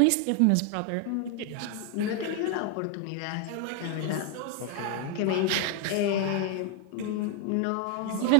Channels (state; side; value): different; both; correlation 0.00